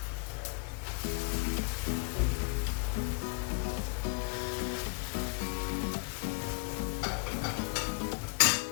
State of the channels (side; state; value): right; quieter; 32.2 dB